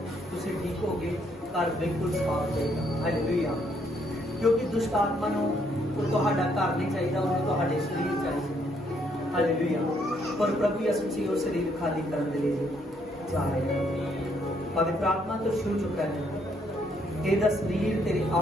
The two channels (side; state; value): both; normal; correlation 0.71